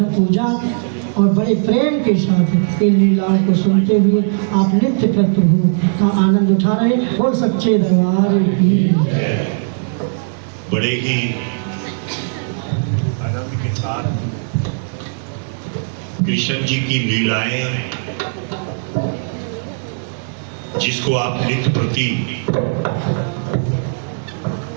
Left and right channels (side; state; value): left; silent; 68 dB below the other